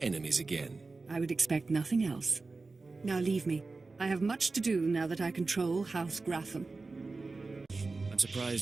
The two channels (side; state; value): left; quieter; 3.7 dB